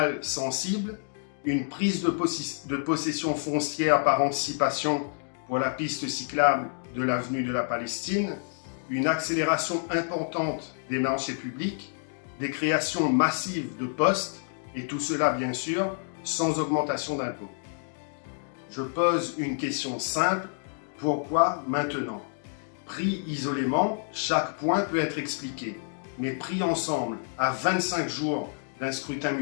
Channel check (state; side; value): silent; right; digital silence